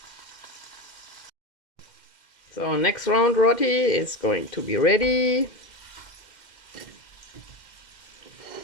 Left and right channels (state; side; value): late; right; 2.1 ms